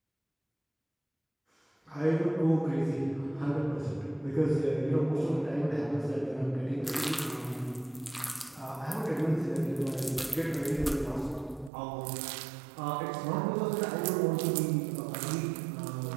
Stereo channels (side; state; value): left; drops out; at 11.7 s